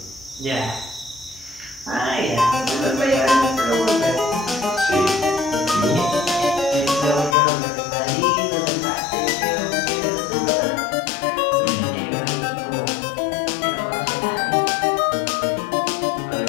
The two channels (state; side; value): drops out; right; at 7.4 s